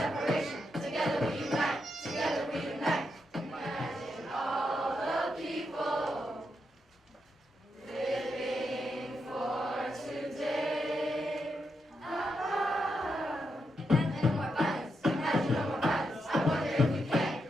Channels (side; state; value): both; normal; correlation 0.83